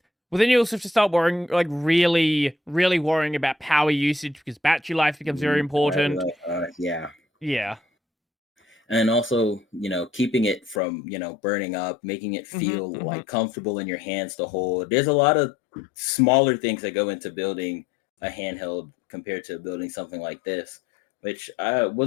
Well, then you also have to start worrying, like really, really worrying about power usage because battery life becomes very important. Yeah. Yeah. And also, keeping it from, burning up, making it Hmm. feel Hmm. like comfortable in your hands to hold. There's a lot of smaller things that go into building a handheld compared to building something like this, which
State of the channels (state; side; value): drops out; right; at 10.8 s